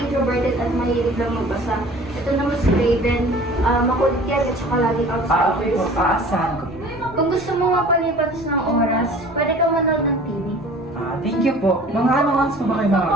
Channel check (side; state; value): both; normal; correlation 0.46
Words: at mahilig lang magbasa. Ito naman si Raven, makulit yan at saka laging outside. Okay po. Aasahan ko. Kung gusto mo mapalipas ng oras, pwede ka manood ng TV. Thank you po. Mga anong oras po ba kayo